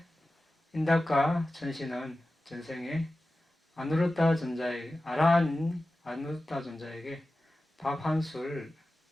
인닥과 천신은 전생에 아누르타 존자에게 아누르타 존자에게 밥 한 술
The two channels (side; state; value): both; normal; correlation 0.95